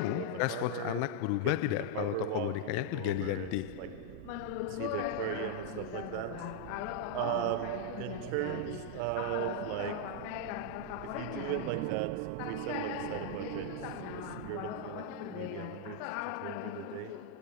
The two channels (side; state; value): both; different; correlation -0.01